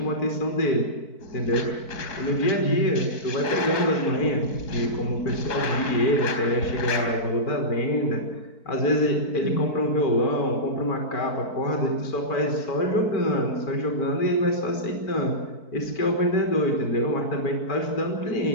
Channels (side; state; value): right; late; 4.6 ms